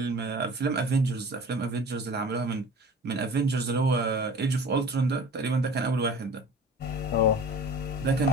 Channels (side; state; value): both; normal; correlation 0.41